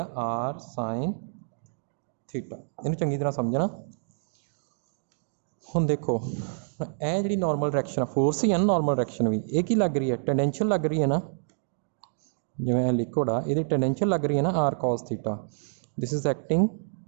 आर साइन थीटा। इन्हें चंगी तरह समझना। हुण देखो यह जी नॉर्मल डायरेक्शन फोर्स ही है ना नॉर्मल डायरेक्शन भी ये की लग रही है टेंडेंशियल लग रही है ना जिवें लिक्विड आ ये टेंडेंशियल लग रही है ना R cos theta. This is acting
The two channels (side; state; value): left; silent; digital silence